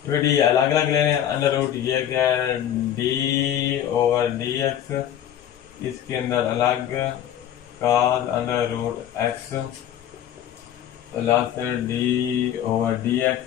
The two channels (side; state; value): right; quieter; 10.7 dB